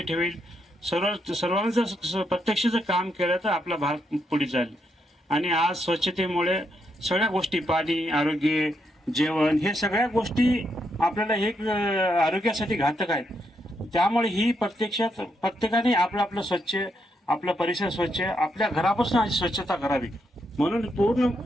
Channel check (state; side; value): normal; both; correlation 0.79